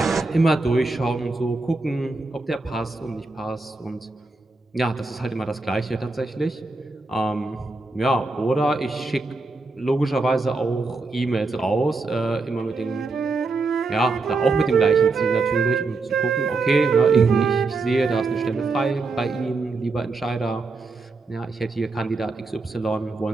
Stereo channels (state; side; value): quieter; left; 3.7 dB